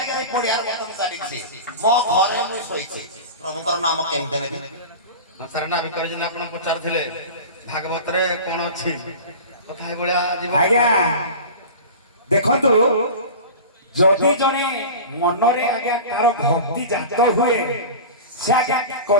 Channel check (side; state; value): both; inverted; correlation -0.33